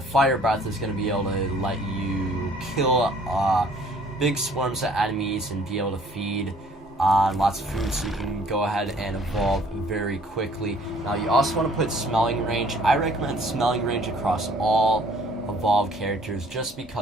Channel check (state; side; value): normal; both; correlation 0.57